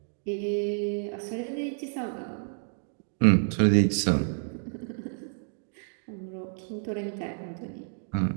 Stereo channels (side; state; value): left; silent; digital silence